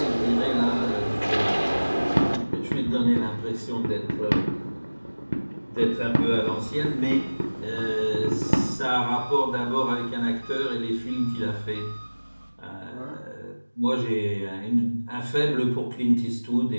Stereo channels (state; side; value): inverted; both; correlation -1.00